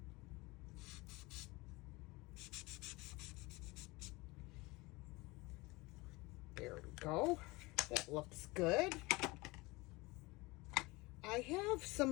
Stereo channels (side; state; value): right; quieter; 23.1 dB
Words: There we go. That looks good. I have